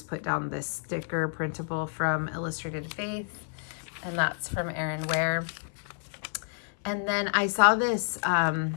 put down this sticker printable from Illustrated Faith, and that's from Erin Ware. And then I saw this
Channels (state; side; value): silent; right; 58 dB below the other